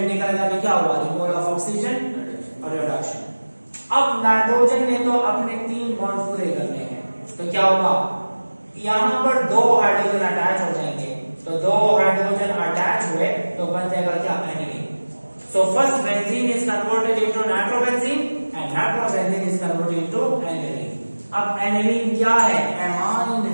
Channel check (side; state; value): both; inverted; correlation -1.00